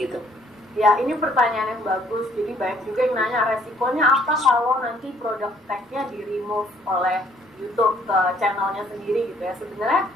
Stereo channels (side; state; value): both; normal; correlation 0.63